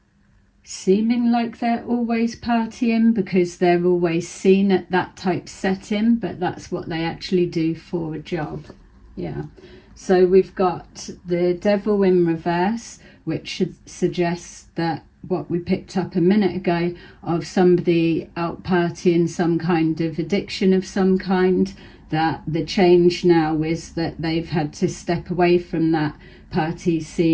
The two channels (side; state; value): both; identical; correlation 1.00